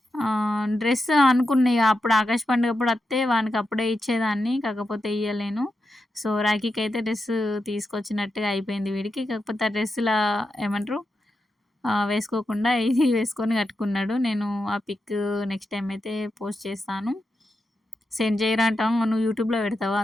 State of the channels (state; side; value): normal; both; correlation 0.88